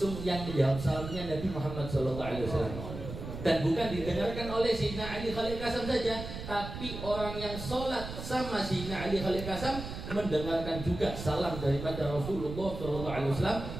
yang menjawab salamnya Nabi Muhammad sallallahu alaihi wasallam. Dan bukan didengarkan oleh Sayyidina Ali Khaliq Ghassan saja, tapi orang yang sholat sama Sayyidina Ali Khaliq Ghassan mendengarkan juga salam daripada Rasulullah SAW,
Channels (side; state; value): right; noise; rumble, 8 dB below the sound